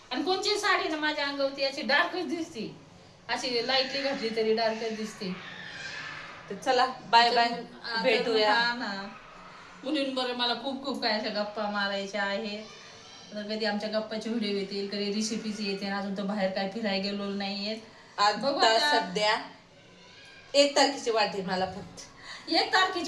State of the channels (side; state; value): both; identical; correlation 1.00